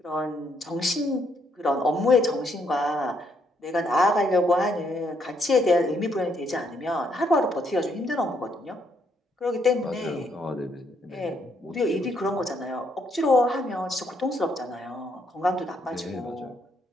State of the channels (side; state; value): both; normal; correlation 0.73